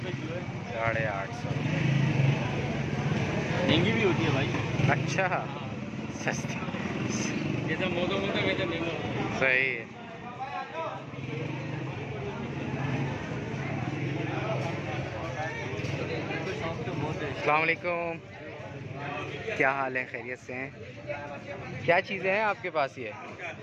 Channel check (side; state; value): both; identical; correlation 1.00